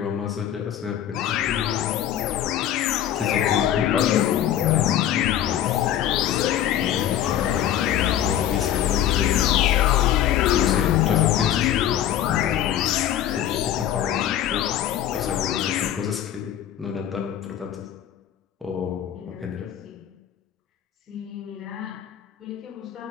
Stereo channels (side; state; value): right; quieter; 11.0 dB